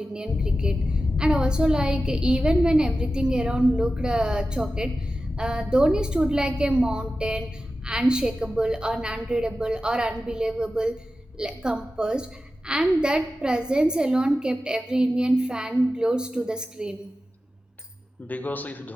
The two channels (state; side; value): normal; both; correlation 0.93